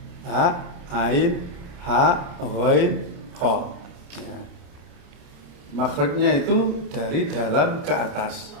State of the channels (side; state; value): left; late; 28 ms